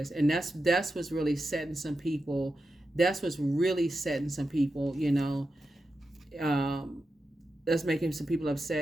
And that's what's really setting some people. That's what's really setting some people, you know. That's making some people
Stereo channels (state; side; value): normal; both; correlation 0.90